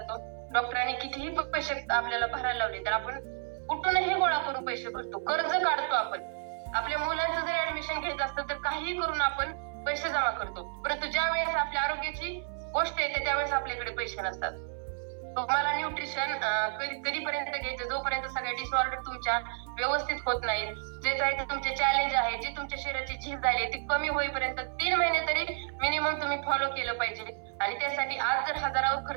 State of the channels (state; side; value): silent; left; 57 dB below the other